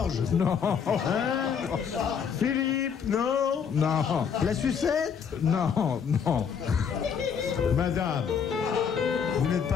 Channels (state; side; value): quieter; right; 6.9 dB